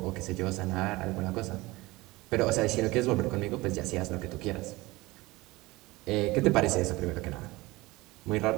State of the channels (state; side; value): quieter; left; 21.0 dB